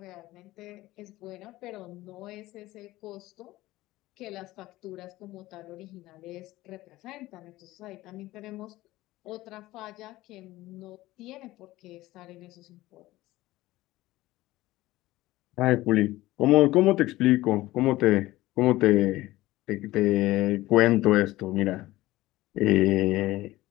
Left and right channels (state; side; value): quieter; right; 17.5 dB